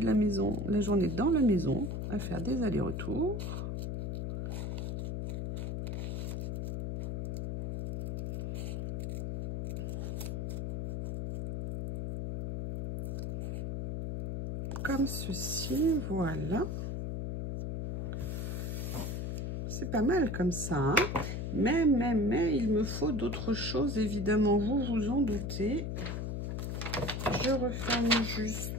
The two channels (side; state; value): left; noise; hum, 3 dB below the sound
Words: la maison, la journée dans la maison, à faire des allers-retours. Comme ceci, voilà. C'est pas mal comme ça, hein. Mais, il me faut d'autres choses, évidemment, vous vous en doutez. Je referme juste